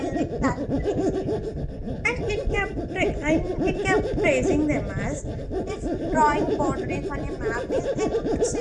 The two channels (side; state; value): both; identical; correlation 1.00